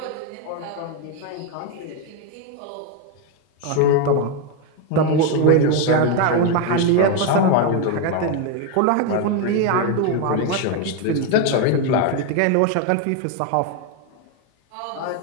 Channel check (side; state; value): both; different; correlation 0.02